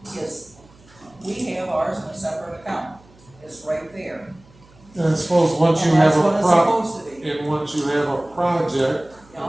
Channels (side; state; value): right; noise; hum, 27 dB below the sound